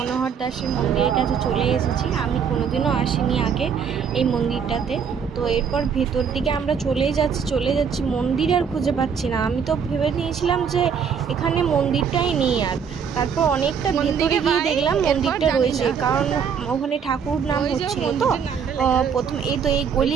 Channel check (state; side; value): quieter; left; 6.9 dB